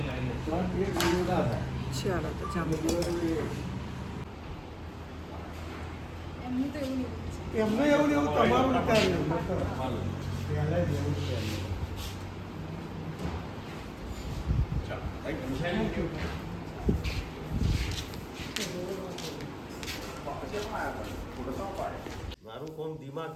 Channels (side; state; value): both; identical; correlation 1.00